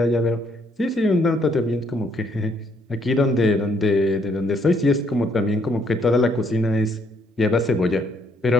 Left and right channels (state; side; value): normal; both; correlation 0.69